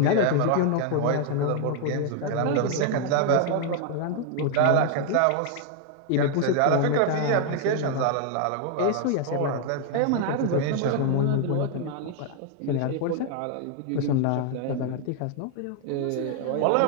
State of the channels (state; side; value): different; both; correlation 0.00